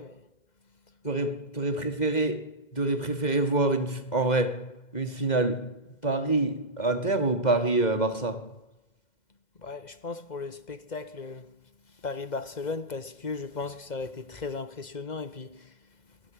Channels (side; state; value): right; late; 2.0 ms